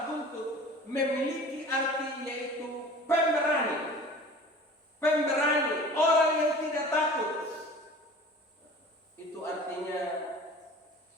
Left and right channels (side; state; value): both; normal; correlation 0.42